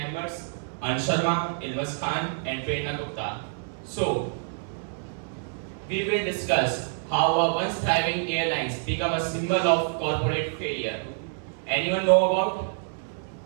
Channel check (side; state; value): left; silent; 60 dB below the other